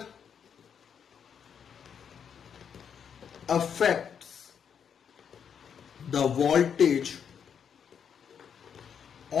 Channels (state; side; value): quieter; right; 7.6 dB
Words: affects the voltage